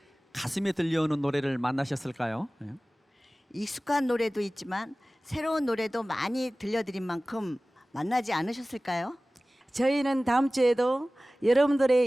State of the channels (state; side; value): normal; both; correlation 0.97